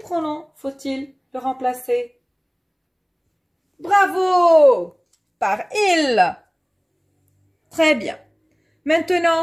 faut-il le remplacer? Bravo! Par il. Très bien.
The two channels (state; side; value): identical; both; correlation 1.00